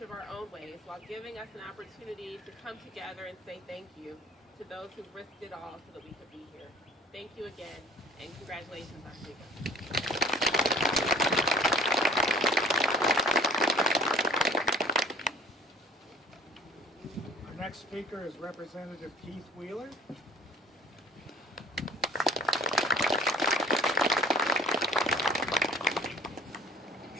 of our own ways while giving us an opportunity to come together and say thank you to those who risked it all so that we could be here. Thank you again, and congratulations, Oswego. Our next speaker is Representative Keith Wheeler.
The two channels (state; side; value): normal; both; correlation 0.49